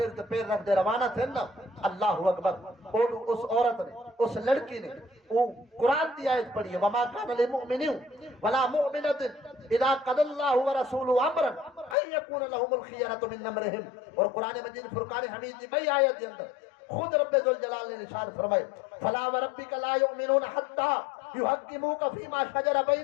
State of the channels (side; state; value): right; drops out; at 12.0 s